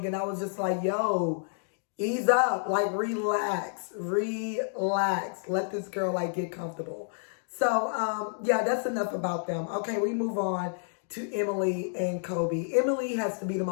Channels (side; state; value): right; silent; digital silence